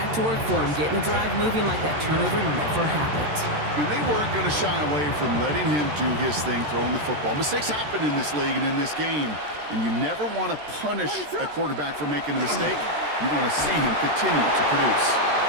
to work for him, getting the drive moving like that turnover never happened. And they weren't going to shy away from letting him do his thing, throwing the football. Mistakes happen in this league and in this game, and you never want to punish a quarterback for making a mistake. You want to see him continue to produce.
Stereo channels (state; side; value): late; left; 13 ms